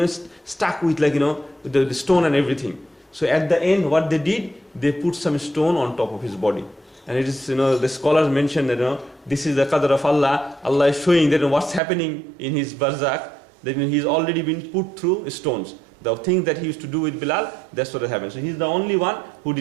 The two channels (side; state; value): left; drops out; at 11.8 s